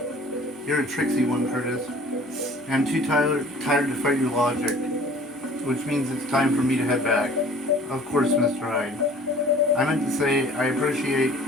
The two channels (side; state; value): both; normal; correlation 0.49